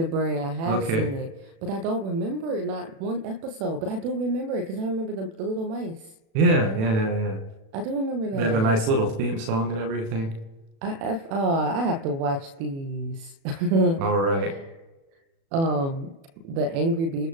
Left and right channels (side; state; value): left; late; 36 ms